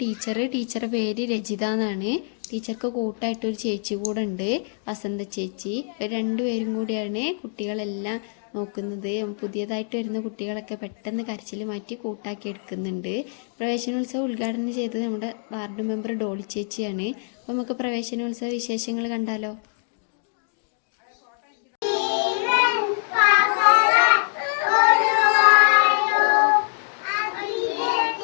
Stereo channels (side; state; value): right; silent; 62 dB below the other